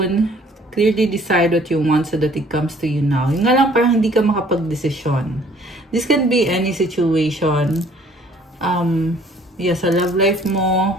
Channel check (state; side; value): normal; both; correlation 0.57